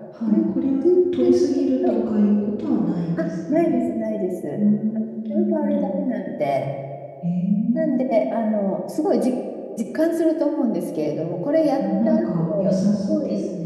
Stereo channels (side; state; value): both; identical; correlation 1.00